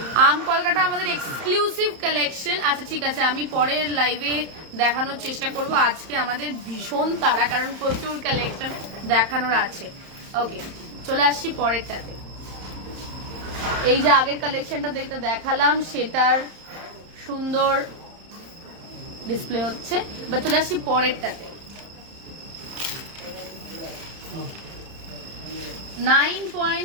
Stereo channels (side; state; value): left; late; 31 ms